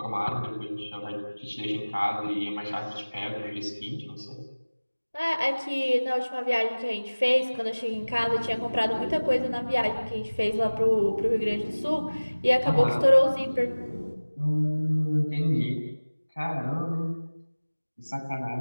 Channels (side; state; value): both; inverted; correlation -1.00